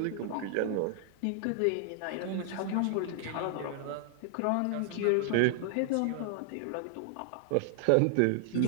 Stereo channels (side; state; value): both; different; correlation 0.00